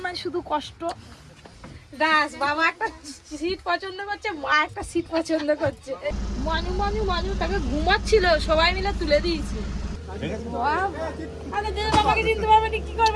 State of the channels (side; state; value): both; identical; correlation 1.00